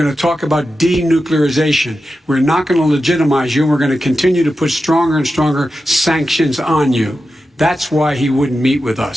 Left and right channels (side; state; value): both; normal; correlation 0.91